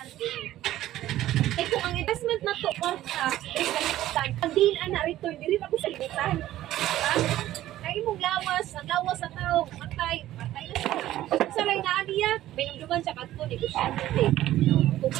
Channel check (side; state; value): left; quieter; 14.1 dB